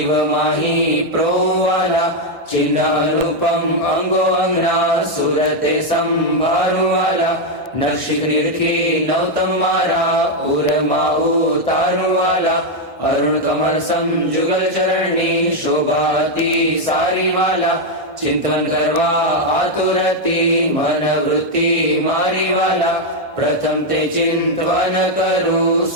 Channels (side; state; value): both; normal; correlation 0.01